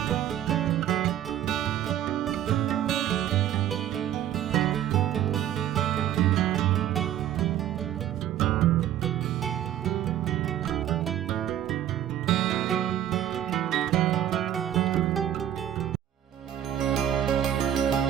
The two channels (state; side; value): quieter; left; 11.3 dB